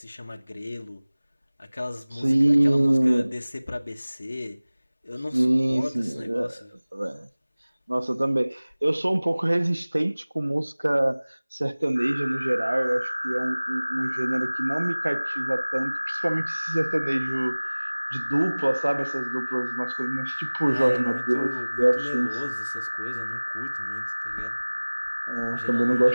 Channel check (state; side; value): inverted; both; correlation -1.00